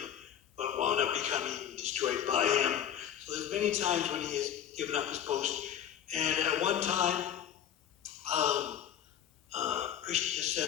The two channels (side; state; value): right; quieter; 9.8 dB